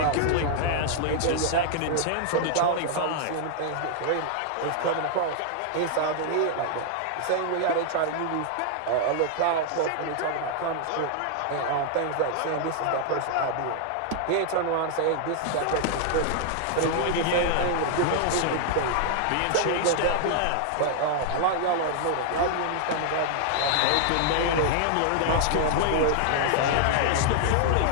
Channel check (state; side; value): different; both; correlation -0.01